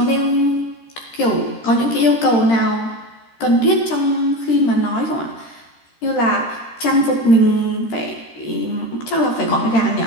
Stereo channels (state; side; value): late; right; 13 ms